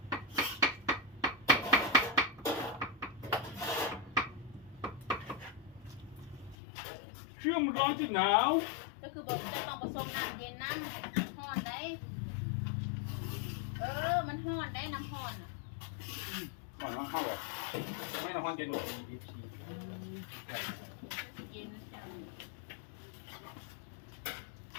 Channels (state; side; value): drops out; right; at 6.6 s